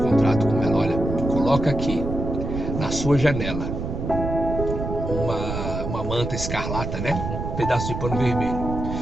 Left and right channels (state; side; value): noise; right; rumble, 5 dB below the sound